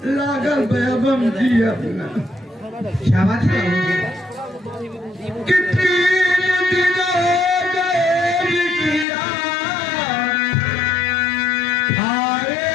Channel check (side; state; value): right; drops out; at 9.1 s